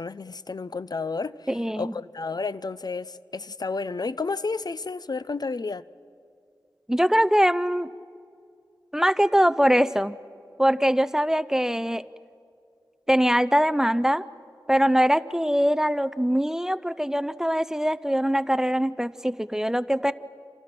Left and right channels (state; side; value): normal; both; correlation 0.96